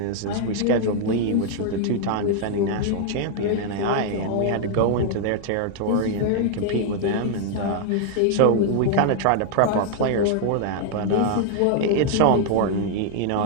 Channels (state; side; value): different; both; correlation 0.00